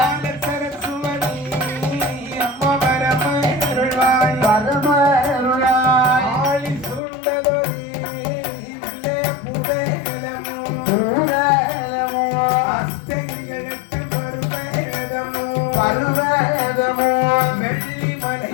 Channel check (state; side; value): drops out; right; at 7.0 s